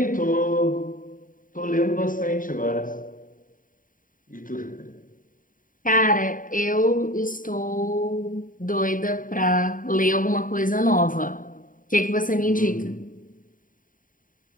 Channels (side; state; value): right; late; 0.39 ms